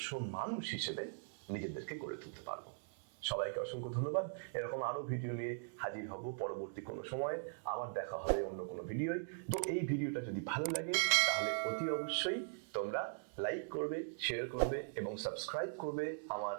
মানুষ হিসেবে নিজেদেরকে গড়ে তুলতে পারবো। সবাইকে অসংখ্য ধন্যবাদ। এরকম আরো ভিডিও নিয়ে হাজির হব পরবর্তী কোনো সময়। আবার দেখা হবে অন্য কোনো ভিডিওয়। তো এই ভিডিওটা যদি ভালো লাগে, তাহলে অতি অবশ্যই তোমরা লাইক করবে, শেয়ার করবে এবং সাবস্ক্রাইব করবে আমার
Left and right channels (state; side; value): silent; left; digital silence